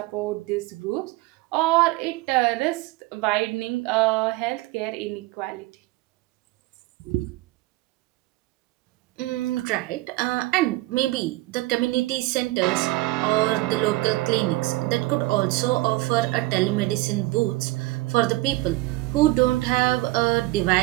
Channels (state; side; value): quieter; left; 19.7 dB